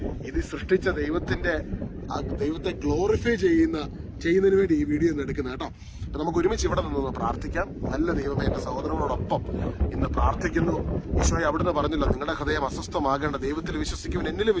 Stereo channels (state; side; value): identical; both; correlation 1.00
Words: ഇത് സൃഷ്ടിച്ച ദൈവത്തെ ഗ്ലോറിഫൈ ചെയ്യുന്നതിന് വേണ്ടി ഈ വീഡിയോ ഒന്ന് എടുക്കുന്നത് കേട്ടോ. അപ്പൊ നമുക്ക് ഒരുമിച്ച് ഇവിടെ നിന്ന് പ്രാർത്ഥിക്കാം. നല്ല ദൈവമേ, എന്റെ സഹോദരങ്ങളോടൊപ്പം ഇന്ന് പ്രാർത്ഥിക്കുന്നു. ഈശോയെ, അവിടുന്ന് പറഞ്ഞല്ലോ, നിങ്ങളുടെ ഹൃദയം അസ്വസ്ഥമാകേണ്ട, ദൈവത്തിൽ വിശ്വസിക്കുവൻ, എന്നിലും